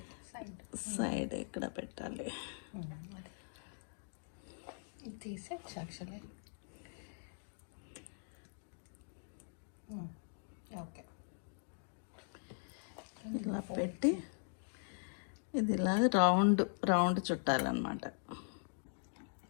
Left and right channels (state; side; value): silent; right; digital silence